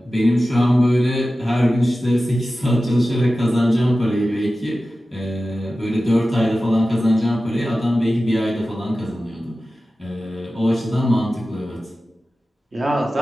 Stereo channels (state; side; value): normal; both; correlation 0.95